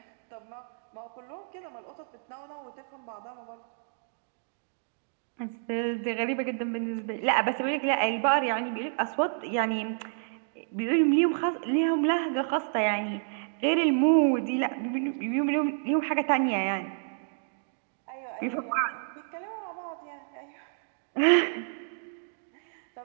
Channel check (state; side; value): silent; left; digital silence